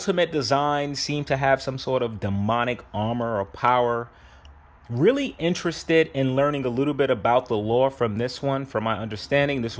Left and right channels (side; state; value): both; identical; correlation 1.00